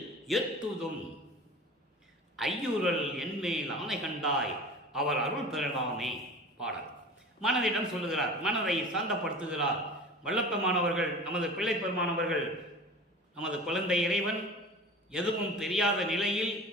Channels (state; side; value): normal; both; correlation 0.37